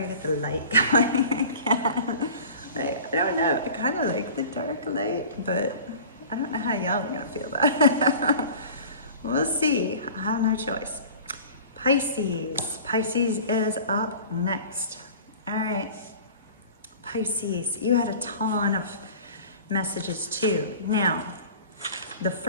can get the light going again. I don't know. I kind of like the dark light, but I don't know how y'all are going to feel about it. We'll see. I have no choice. Pisces. Pisces is up next. All right. Pisces, you had a ton of messages too. Now, the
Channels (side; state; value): both; inverted; correlation -0.42